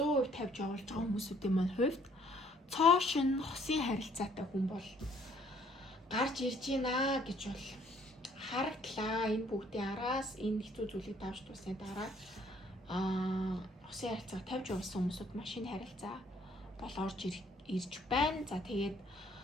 тавьж явуулж байгаа хүмүүсүүдийн маань хувьд цоо шин хосын харилцаатай хүн бол гарч ирж байна гэж бол харагдлаа. Энэ бүгдийн араас энэ хэцүү зүйлийг давж туусны дараа хосын харилцаа тавьж явуулсан хүмүүсүүд машин харилцаа бол орж ирж байна. За тэгээд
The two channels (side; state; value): both; normal; correlation 0.62